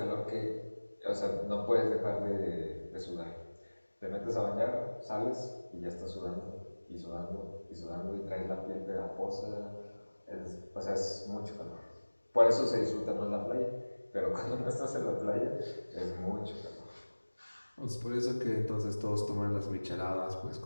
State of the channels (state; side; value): inverted; both; correlation -1.00